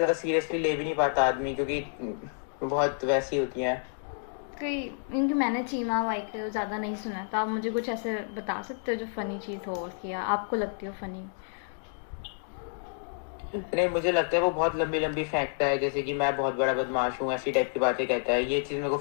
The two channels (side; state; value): right; silent; digital silence